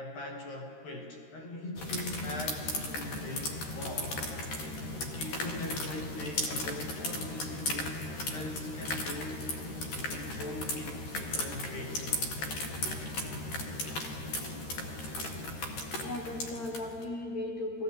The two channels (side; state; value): right; late; 13 ms